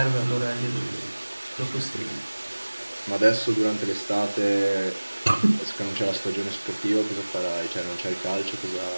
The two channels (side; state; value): both; inverted; correlation -1.00